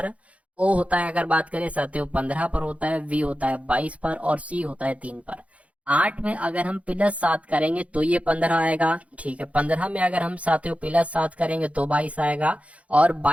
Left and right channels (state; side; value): late; left; 0.065 ms